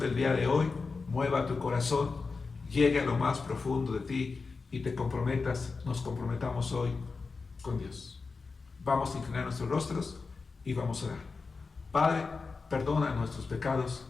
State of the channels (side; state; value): right; quieter; 4.4 dB